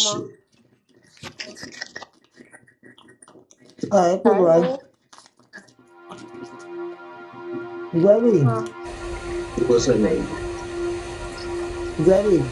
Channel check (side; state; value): both; identical; correlation 1.00